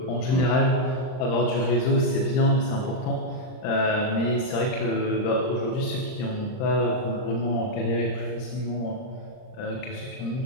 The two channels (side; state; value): right; late; 39 ms